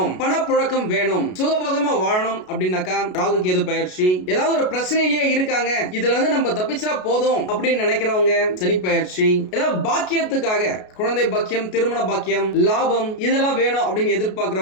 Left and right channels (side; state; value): right; late; 33 ms